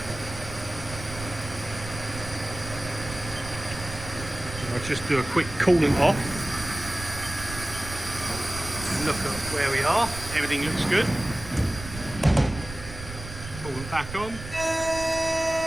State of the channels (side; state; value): right; noise; rumble, 11 dB below the sound